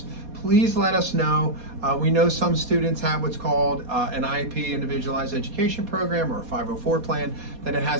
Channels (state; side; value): late; left; 4.2 ms